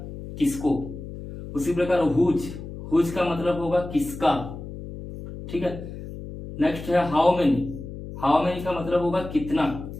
किसको। उसी प्रकार हुज का मतलब होगा किसका, ठीक है। नेक्स्ट है हाउ मेनी का मतलब होगा कितना,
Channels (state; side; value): noise; left; hum, 11 dB below the sound